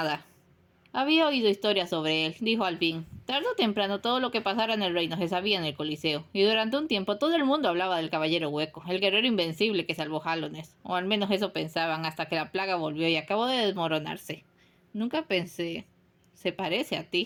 Había oído historias sobre él, dijo al fin. Tarde o temprano todo lo que pasara en el reino se sabía en el Coliseo, y durante un tiempo todo el mundo hablaba del caballero hueco, el guerrero invencible que salvó Hallownest, o al menos eso pensaban hasta que la plaga volvió y acabó de desmoronarse. Nunca pensé... Se parece a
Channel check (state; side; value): identical; both; correlation 1.00